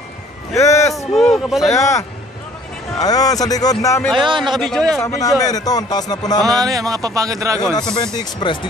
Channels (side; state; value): both; normal; correlation 0.55